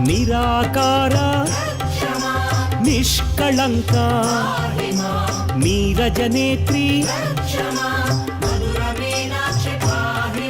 నిరాకార నిష్కళంక నీరజనేత్రి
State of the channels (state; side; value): identical; both; correlation 1.00